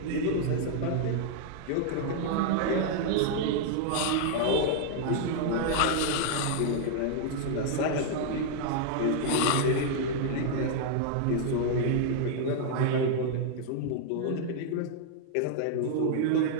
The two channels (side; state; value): both; different; correlation -0.01